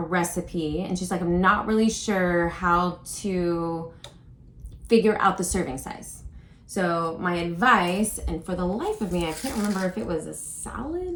and she's like, I'm not really sure how to figure out the serving size. So my advice, and for the life of me, I can't remember if it was a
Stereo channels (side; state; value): both; identical; correlation 1.00